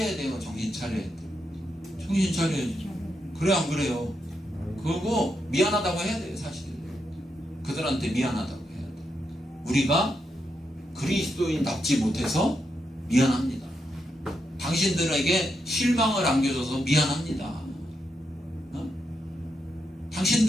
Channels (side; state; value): both; normal; correlation 0.83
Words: 돼요. 정신 차려야 돼. 정신 차려야죠. 그래 안 그래요? 그리고 미안하다고 해야 돼요. 사실 그들한테 미안하다고 해야 돼. 우리가 그리스도인답지 못해서 미안합니다. 당신들에게 실망을 안겨줘서 미안합니다.